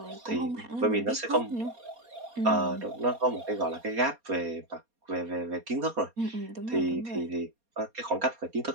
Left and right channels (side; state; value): left; late; 4.2 ms